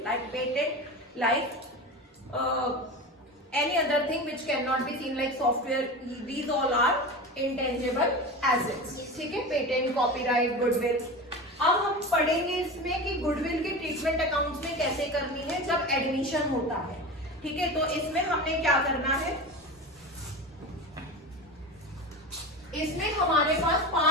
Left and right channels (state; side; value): normal; both; correlation 0.28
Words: like patent, like any other thing which cannot be seen like software. These all are intangible assets. ठीक है, पेटेंट, कॉपीराइट, गुडविल। अब हम पढ़ेंगे इसमें कि गुडविल की ट्रीटमेंट अकाउंट्स में कैसे करनी है जब एडमिशन होता है। ठीक है, तो इसमें हमने क्या करना है, इसमें हमारे पास